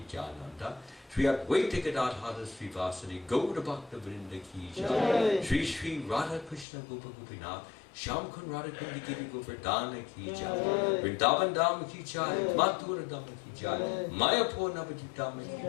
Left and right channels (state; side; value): drops out; right; at 6.7 s